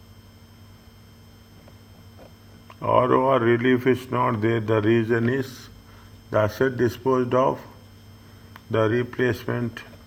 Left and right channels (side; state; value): both; identical; correlation 1.00